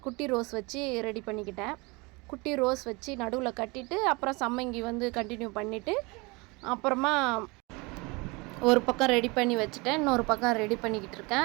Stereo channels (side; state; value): left; quieter; 26.6 dB